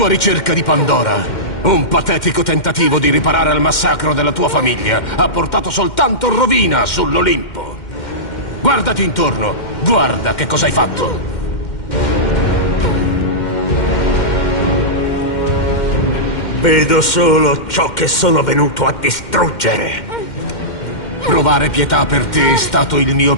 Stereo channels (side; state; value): right; late; 2.1 ms